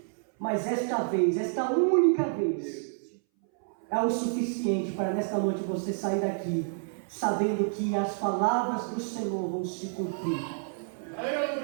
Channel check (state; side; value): silent; left; 59 dB below the other